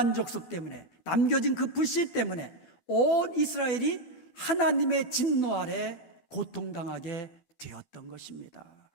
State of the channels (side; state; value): right; late; 13 ms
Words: 족속 때문에, 남겨진 그 불씨 때문에 온 이스라엘이 하나님의 진노 아래 고통당하게 되었던 것입니다.